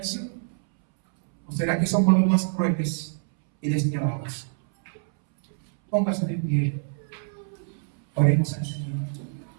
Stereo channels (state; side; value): silent; left; 61 dB below the other